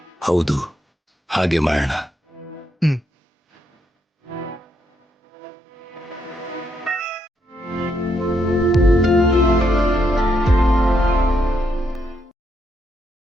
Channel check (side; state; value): both; normal; correlation 0.78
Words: ಹೌದು, ಹಾಗೆ ಮಾಡೋಣ.